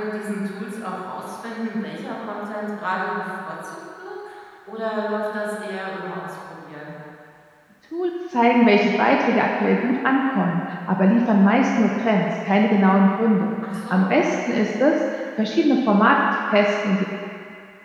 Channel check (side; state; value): both; identical; correlation 1.00